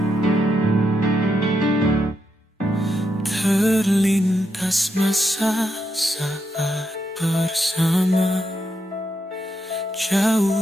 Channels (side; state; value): both; normal; correlation 0.81